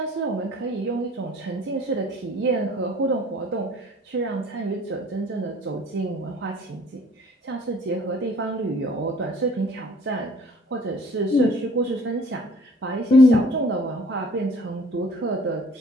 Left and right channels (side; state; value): both; normal; correlation 0.52